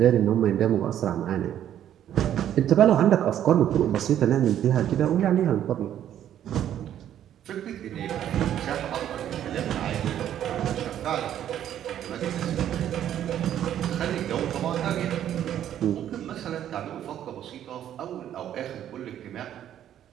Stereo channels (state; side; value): quieter; left; 10.8 dB